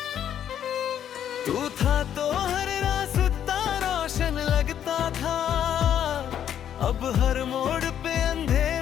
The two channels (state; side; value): quieter; right; 9.8 dB